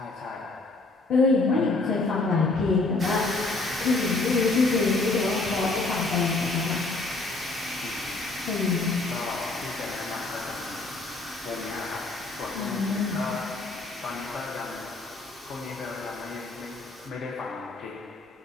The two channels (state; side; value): quieter; right; 3.3 dB